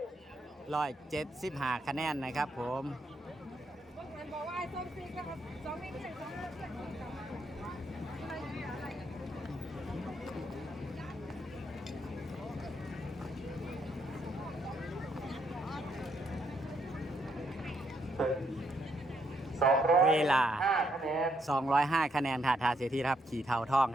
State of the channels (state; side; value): normal; both; correlation 0.75